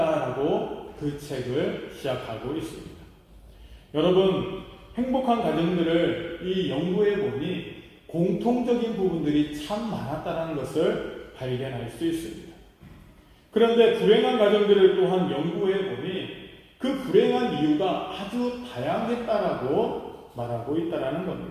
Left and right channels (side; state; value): both; identical; correlation 1.00